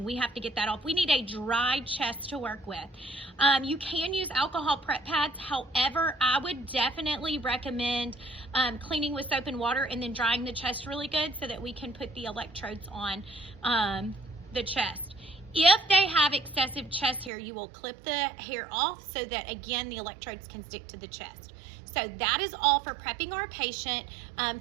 we have to get that off. We need a dry chest to work with. You can use alcohol prep pads. However, I would definitely recommend cleaning with soap and water and then drying the chest really good so that we can put the electrodes on the chest. If they have excessive chest hair, you will clip the hair off so that, again, the electrodes can stick to the chest. So that is all for prepping our patient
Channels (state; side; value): drops out; left; at 17.3 s